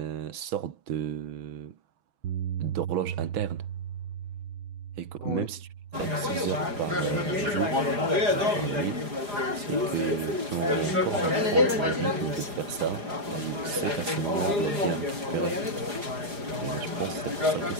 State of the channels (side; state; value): left; late; 4.9 ms